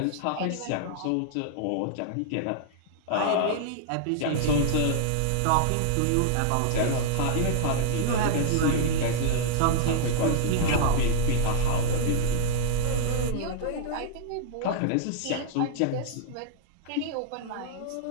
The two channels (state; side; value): different; both; correlation -0.01